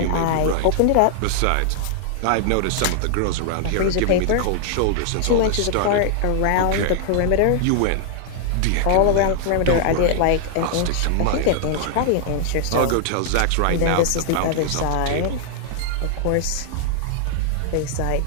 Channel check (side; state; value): both; different; correlation -0.01